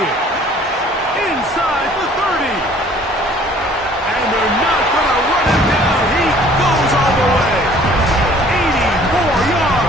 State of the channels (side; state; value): both; normal; correlation 0.54